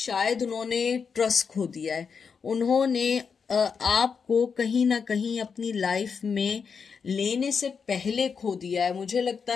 उन्होंने ट्रस्ट खो दिया है, उन्होंने आपको कहीं ना कहीं अपनी लाइफ में लेने से पहले खो दिया है। मुझे लगता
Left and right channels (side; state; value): right; quieter; 6.0 dB